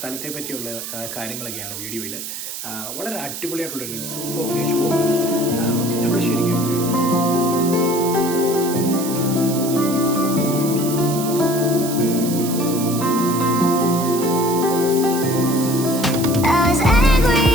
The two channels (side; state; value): right; noise; hiss, 8 dB below the sound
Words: പറ്റിയുള്ള കാര്യങ്ങളൊക്കെയാണ് വീഡിയോയിൽ. വളരെ അടിപൊളിയായിട്ടുള്ളൊരു സൂപ്പർ പ്ലേസ്. നമ്മൾ ശരിക്കും